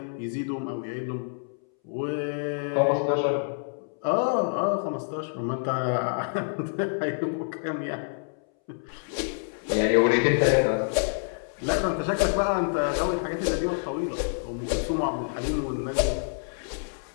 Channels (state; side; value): silent; right; 60 dB below the other